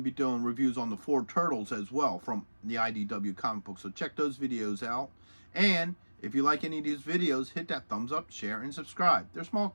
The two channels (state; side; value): inverted; both; correlation -1.00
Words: be doing reviews on the 4 Turtles as well from the IDW comic book. So check those videos out. And if you like any of these videos, hit that thumbs up, share, and subscribe. They're small